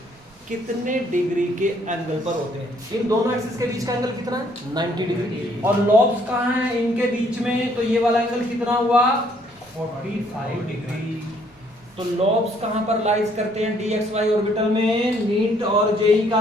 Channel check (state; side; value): normal; both; correlation 0.65